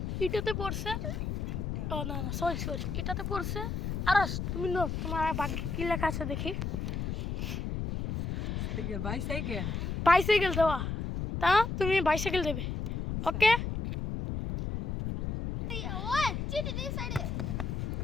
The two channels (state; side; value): noise; left; rumble, 3 dB below the sound